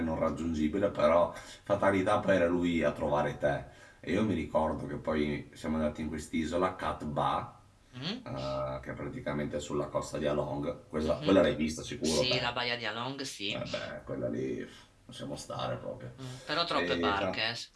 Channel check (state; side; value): identical; both; correlation 1.00